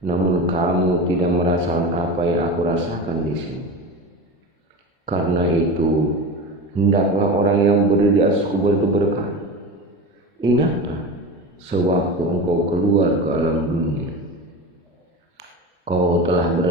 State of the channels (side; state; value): both; normal; correlation 0.28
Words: Namun kamu tidak merasakan apa yang aku rasakan di sini. Karena itu, hendaklah orang yang berdiri di atas kubur itu berkata, ingatlah sewaktu engkau keluar ke alam dunia, kau telah